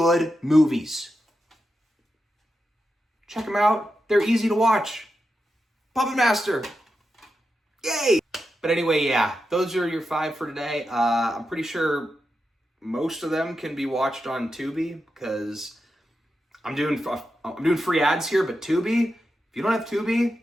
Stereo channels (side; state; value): both; normal; correlation 0.88